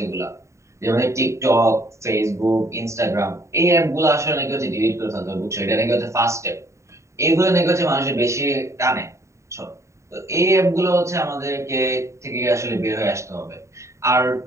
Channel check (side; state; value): left; late; 0.14 ms